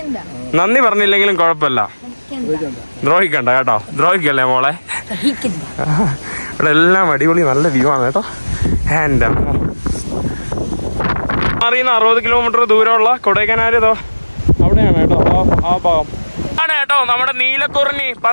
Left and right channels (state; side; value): inverted; both; correlation -1.00